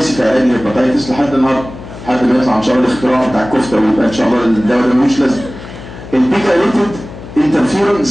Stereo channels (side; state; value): left; noise; hum, 14 dB below the sound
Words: في علاج الهيباتيتس لحد النهارده، لحد ما يطلع ان شاء الله الاختراع بتاع الكفته ويبقى ان شاء الله الدواء ده ملوش لازمه. البيجايليتد انترفيرون